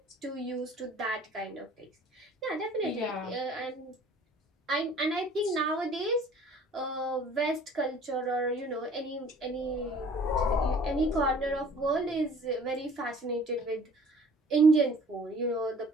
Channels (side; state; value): both; normal; correlation 0.51